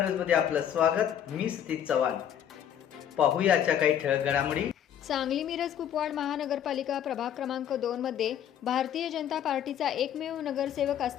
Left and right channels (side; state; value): right; quieter; 9.7 dB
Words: आपलं स्वागत. मी सतीश चव्हाण. पाहूया आजच्या काही ठळक घडामोडी. सांगली मिरज कुपवाड महानगरपालिका प्रभाग क्रमांक 2 मध्ये भारतीय जनता पार्टीचा एकमेव नगरसेवक